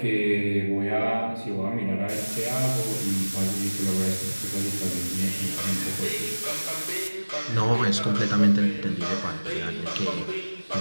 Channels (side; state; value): both; inverted; correlation -1.00